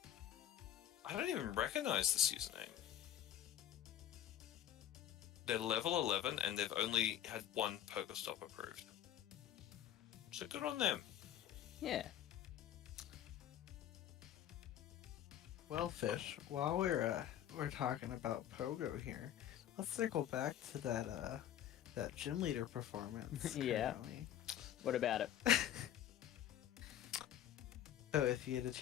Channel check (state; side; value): quieter; right; 11.3 dB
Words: I don't even recognize this username. They're level 11 and they've only had one Pokestop approved. So good on them. Yeah. Well, Fish, while we're talking about Pogo here, let's circle back to that gym leader performance. Yeah. currently. What about it? So if you had to